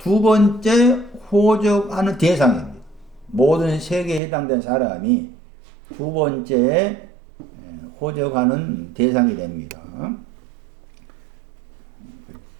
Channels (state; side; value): drops out; left; at 4.2 s